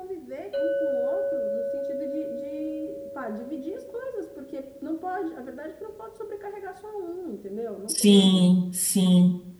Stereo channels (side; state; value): both; identical; correlation 1.00